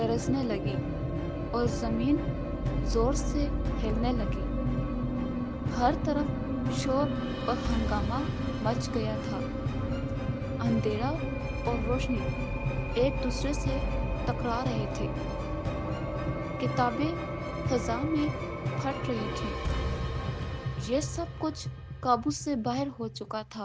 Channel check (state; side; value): identical; both; correlation 1.00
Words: लगी और जमीन जोर से हिलने लगी। हर तरफ शोर और हंगामा मच गया था। अंधेरा और रोशनी एक दूसरे से टकरा रहे थे। किताबें फजा में फट रही थी। ये सब कुछ काबू से बाहर हो चुका